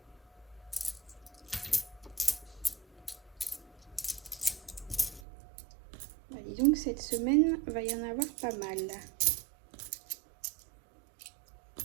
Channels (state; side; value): drops out; left; at 5.2 s